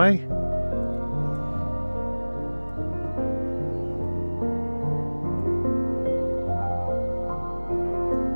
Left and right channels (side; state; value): both; inverted; correlation -1.00